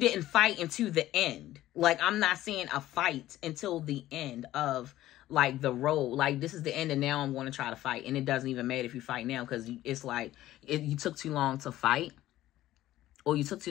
fight into the end. Like, I'm not seeing a fight until the end of, like, the road. Like, this is the end and now I'm going to try to fight. And it doesn't even matter if you fight now. Because it's like, you took too long to fight. Or you took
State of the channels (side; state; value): right; quieter; 14.6 dB